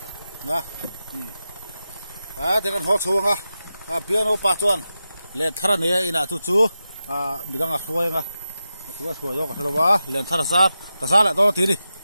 nah dia kan ho chu nga biar apa tuan len thara ne ina chu bidang afoi nga tua thua yo ka thalawa len thara sar ka sala to ti ni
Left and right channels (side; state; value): both; inverted; correlation -0.91